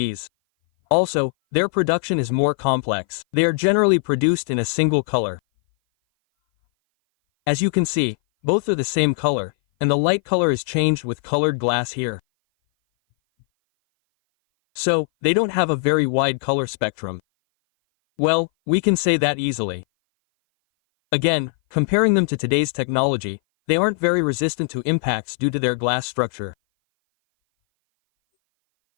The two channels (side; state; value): right; silent; 58 dB below the other